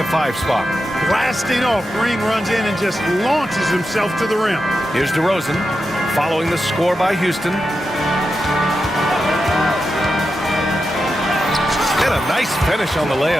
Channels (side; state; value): both; normal; correlation 0.89